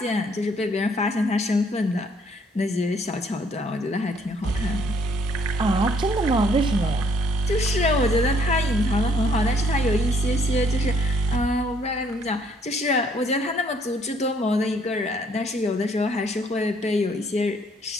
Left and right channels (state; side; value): normal; both; correlation 0.65